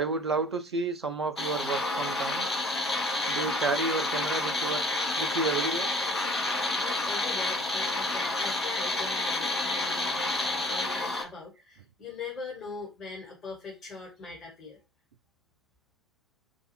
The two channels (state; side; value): normal; both; correlation 0.52